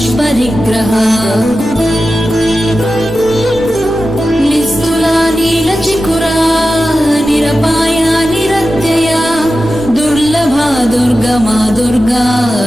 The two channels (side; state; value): both; normal; correlation 0.93